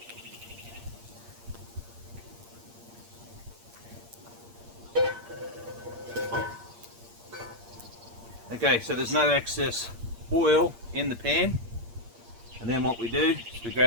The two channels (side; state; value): left; late; 8.6 ms